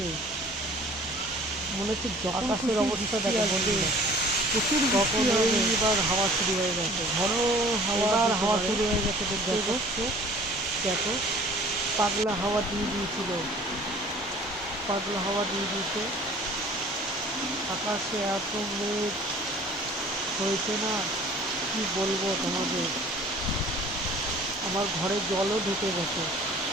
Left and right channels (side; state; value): both; normal; correlation 0.49